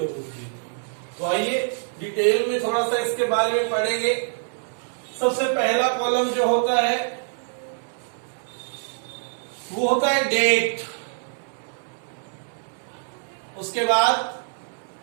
दी। तो आइए डिटेल में थोड़ा सा इसके बारे में पढ़ेंगे। सबसे पहला कॉलम जो होता है वो होता है डेट, उसके बाद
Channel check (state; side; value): silent; left; 62 dB below the other